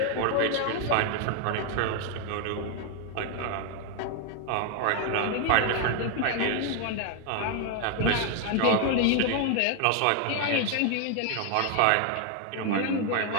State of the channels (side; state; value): both; different; correlation 0.00